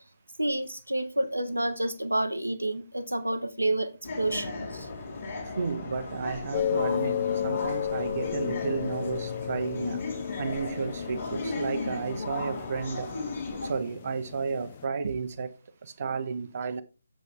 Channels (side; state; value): both; inverted; correlation -0.78